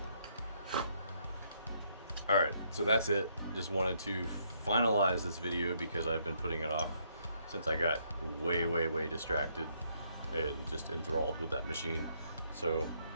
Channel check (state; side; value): inverted; both; correlation -0.72